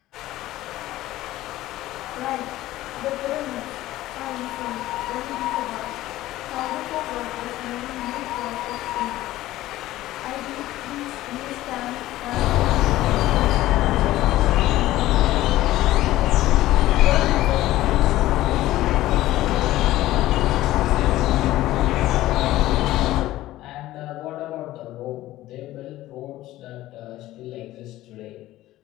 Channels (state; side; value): quieter; right; 15.7 dB